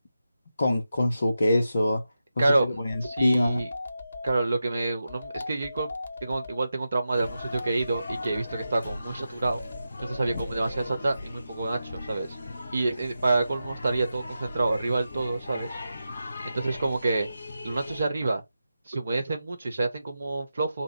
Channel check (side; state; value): both; inverted; correlation -0.90